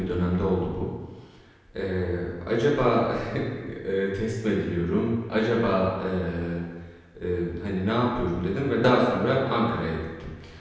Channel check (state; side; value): identical; both; correlation 1.00